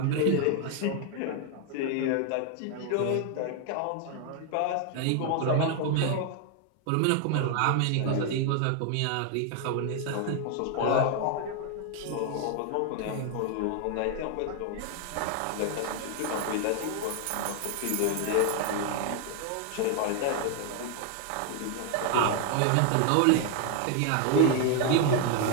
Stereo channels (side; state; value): both; different; correlation 0.00